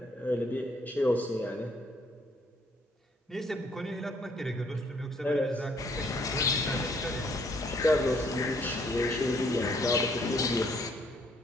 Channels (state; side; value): normal; both; correlation 0.66